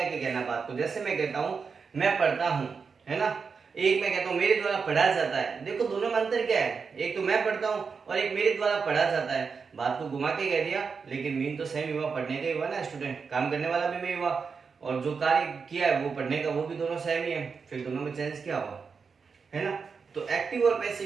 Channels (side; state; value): left; quieter; 5.4 dB